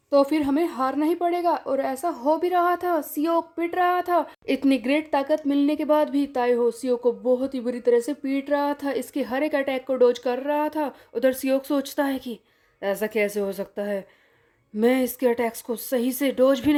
तो फिर हमें हारना ही पड़ेगा। और ऐसा हो भी रहा था, सियोक पीट रहा था। इतनी ग्रेट ताकत मिलने के बाद भी ताइहो सियोक को बहुत ही बुरी तरह से पीट रहा था, इसके हर एक अटैक को डोज कर रहा था। उधर सियोक सोचता है कि ऐसा कैसे हो सकता है, मैं इसके अटैक्स को सही से डोज भी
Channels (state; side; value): identical; both; correlation 1.00